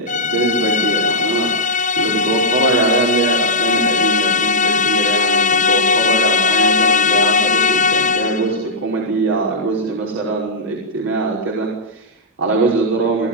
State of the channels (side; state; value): both; normal; correlation -0.10